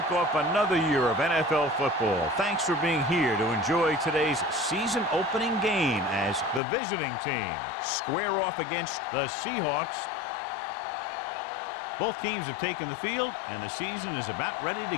off another year of NFL football. Thanks for being here to enjoy today's season opening game as the visiting team square off against the Seahawks. Both teams have taken the field, and the season is about ready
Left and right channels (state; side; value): drops out; right; at 6.6 s